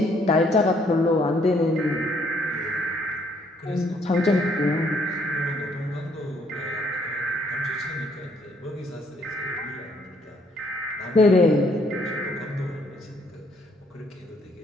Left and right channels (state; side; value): normal; both; correlation 0.67